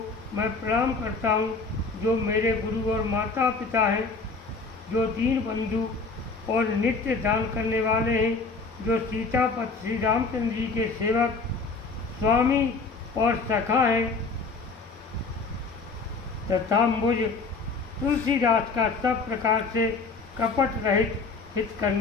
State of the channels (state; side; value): quieter; right; 4.2 dB